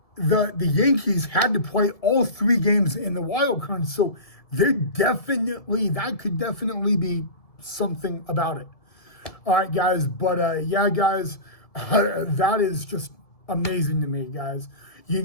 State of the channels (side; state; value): right; late; 1.7 ms